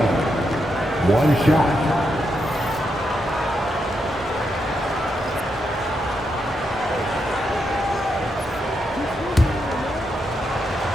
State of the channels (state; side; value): normal; both; correlation 0.82